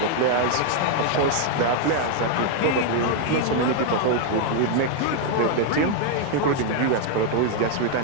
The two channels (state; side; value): different; both; correlation 0.00